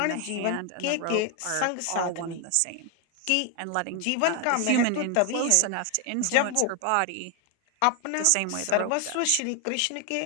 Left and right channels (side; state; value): both; different; correlation 0.01